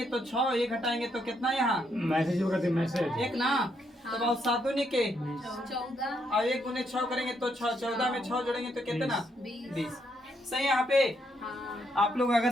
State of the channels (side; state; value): both; normal; correlation 0.76